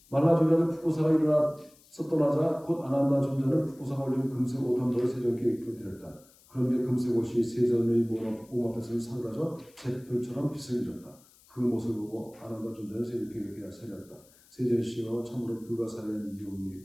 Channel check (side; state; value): left; noise; hiss, 28 dB below the sound